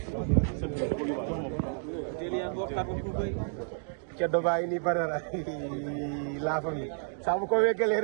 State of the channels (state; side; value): silent; left; digital silence